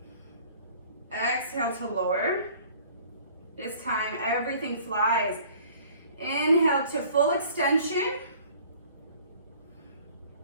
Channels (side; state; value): both; inverted; correlation -0.52